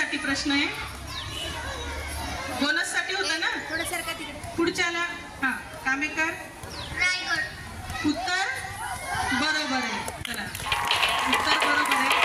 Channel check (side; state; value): both; identical; correlation 1.00